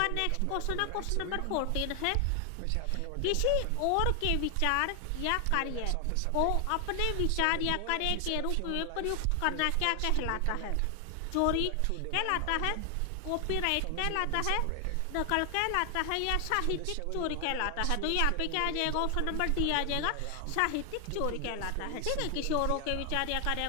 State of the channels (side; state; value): both; different; correlation 0.00